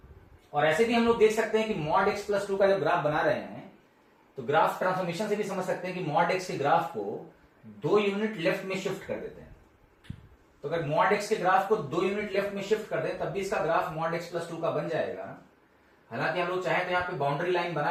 और ऐसे भी हम लोग देख सकते हैं कि मॉड x प्लस 2 का जब ग्राफ बना रहे हैं, तो ग्राफ ट्रांसफॉर्मेशन से भी समझ सकते हैं कि मॉड x के ग्राफ को 2 यूनिट लेफ्ट में शिफ्ट कर देते हैं। तो अगर मॉड x के ग्राफ को 2 यूनिट लेफ्ट में शिफ्ट कर दें, तब भी इसका ग्राफ मॉड x प्लस 2 का बन जाएगा। हालांकि हम लोग चाहें तो यहाँ पे बाउंड्री लाइन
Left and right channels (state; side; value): identical; both; correlation 1.00